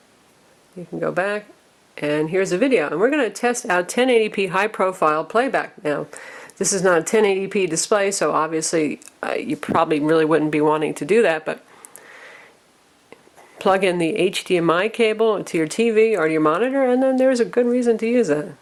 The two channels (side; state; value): both; identical; correlation 1.00